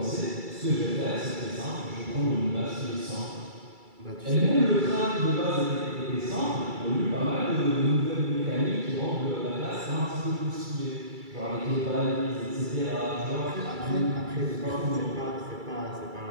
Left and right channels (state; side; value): late; left; 2.3 ms